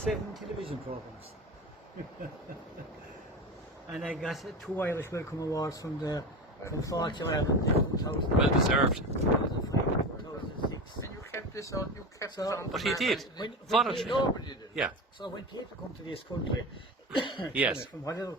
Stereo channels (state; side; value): normal; both; correlation 0.26